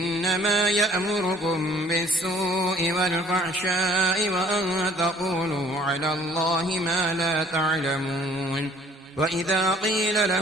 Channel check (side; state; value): both; normal; correlation 0.56